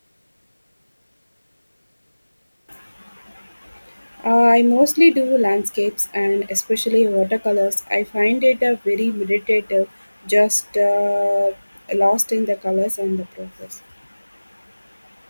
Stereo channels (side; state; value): both; inverted; correlation -1.00